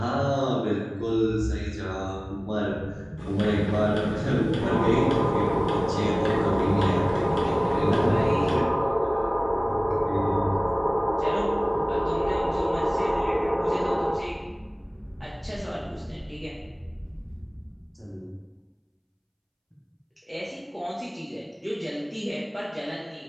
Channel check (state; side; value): identical; both; correlation 1.00